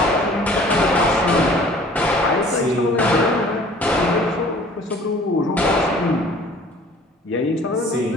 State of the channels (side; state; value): both; normal; correlation 0.51